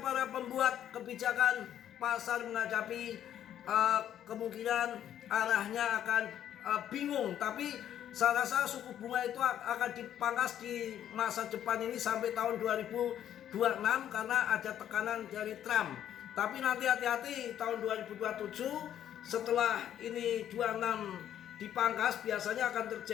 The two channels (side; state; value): right; quieter; 10.6 dB